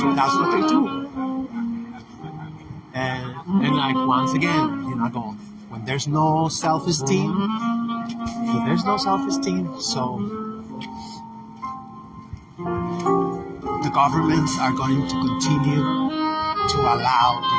what they do. And like, once again, I go, when there's no self-esteem, so the governments are going to continue to allow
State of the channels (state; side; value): identical; both; correlation 1.00